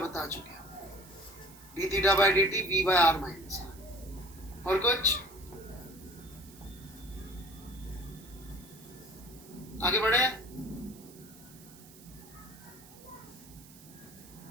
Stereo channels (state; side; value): noise; right; hiss, 21 dB below the sound